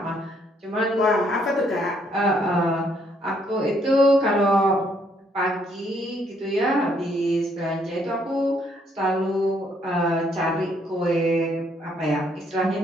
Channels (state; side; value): normal; both; correlation 0.69